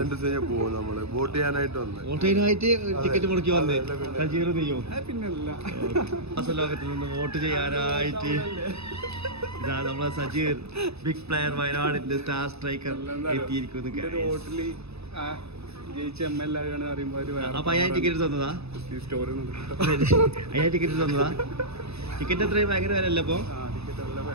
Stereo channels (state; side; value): late; left; 0.79 ms